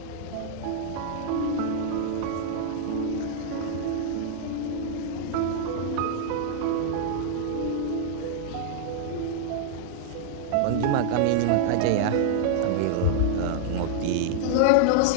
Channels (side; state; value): both; different; correlation -0.01